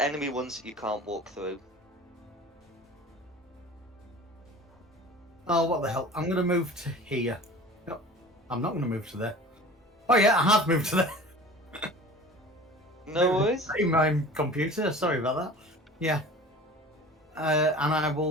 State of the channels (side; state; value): both; normal; correlation 0.41